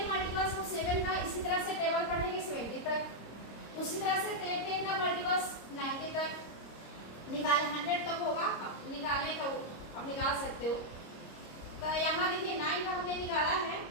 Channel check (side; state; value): right; late; 26 ms